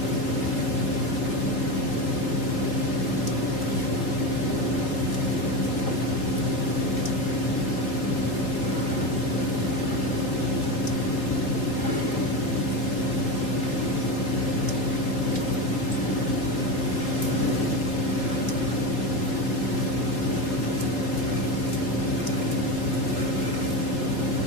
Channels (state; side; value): late; right; 3.6 ms